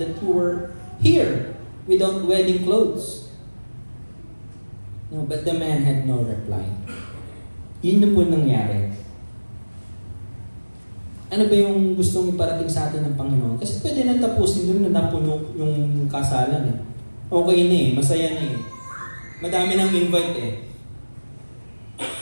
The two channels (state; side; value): inverted; both; correlation -1.00